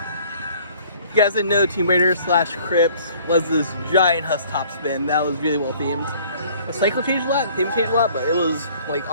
If you guys didn't know, Tomb Raider / Crypt was this giant Huss top spin that was really well themed. The cycle changed a lot, the theme changed a lot, but it was, like,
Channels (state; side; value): inverted; both; correlation -0.55